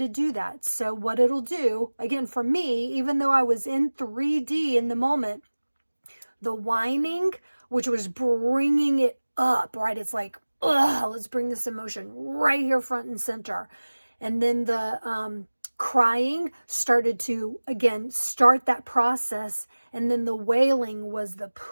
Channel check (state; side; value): inverted; both; correlation -1.00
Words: do that. So what it'll do, again, for me, even though I was in 3D in the moment, the whining, which was bringing it up, right? It's like, let's bring this emotion right here front and center. And then the crying started to, again, start that process. And then the wailing was the